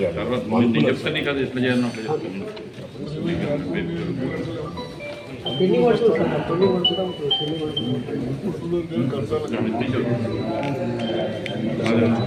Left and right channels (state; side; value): identical; both; correlation 1.00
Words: తర్వాత నేను చెప్తాను నీకు అది ఎట్లా చేయాలని అట్లా